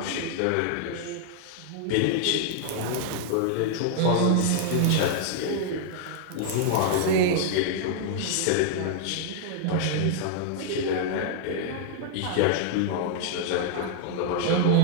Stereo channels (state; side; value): different; both; correlation 0.00